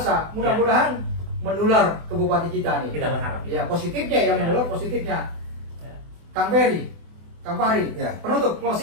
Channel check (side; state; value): left; late; 24 ms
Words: Mudah-mudahan menular ke bupati kita nih. Kita berharap. Ya, positifnya ya, Ya. menular positifnya. Ya. Kang Ferry, Kang Fahri, Ya. penutup